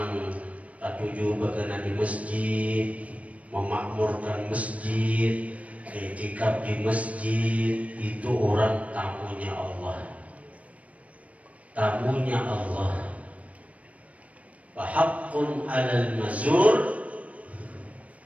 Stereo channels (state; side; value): late; left; 0.066 ms